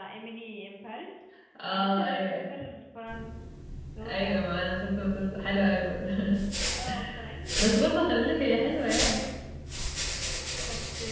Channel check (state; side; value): identical; both; correlation 1.00